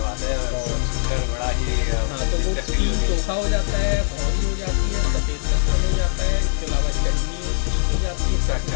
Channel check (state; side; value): silent; right; digital silence